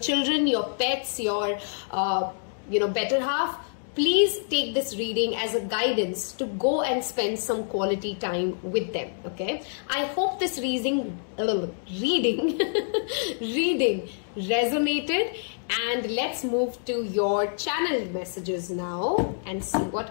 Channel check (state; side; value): silent; right; digital silence